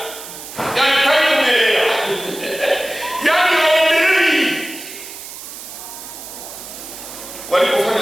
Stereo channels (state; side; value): noise; right; hiss, 12 dB below the sound